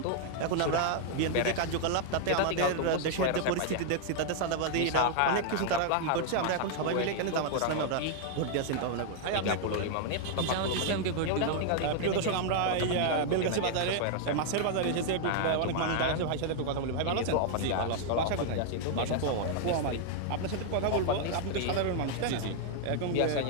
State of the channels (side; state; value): both; different; correlation 0.00